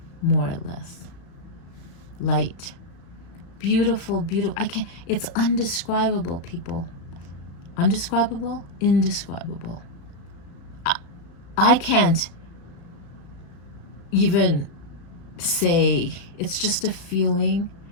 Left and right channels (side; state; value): right; late; 35 ms